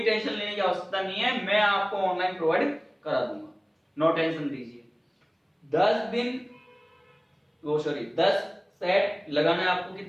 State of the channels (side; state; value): both; identical; correlation 1.00